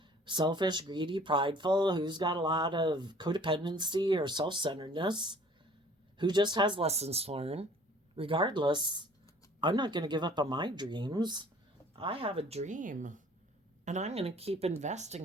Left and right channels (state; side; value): normal; both; correlation 0.52